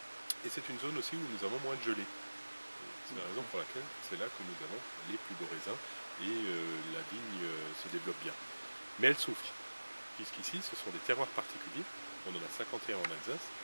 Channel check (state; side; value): inverted; both; correlation -1.00